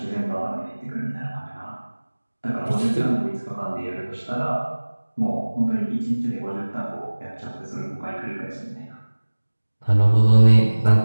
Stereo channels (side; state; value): both; inverted; correlation -1.00